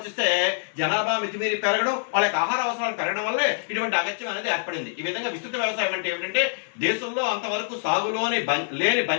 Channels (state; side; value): silent; right; 62 dB below the other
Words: జనాభా మితిమీరి పెరగడం, వాళ్ళ యొక్క ఆహార అవసరాలు పెరగడం వల్లే ఇటువంటి అగత్యం అనేది ఏర్పడింది. ఈ విధంగా విస్తృత వ్యవసాయం అంటే ఏమిటంటే దేశంలో అంతవరకు సాగులోని లేని